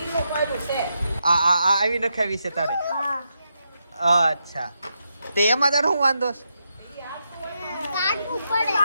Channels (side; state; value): both; inverted; correlation -0.83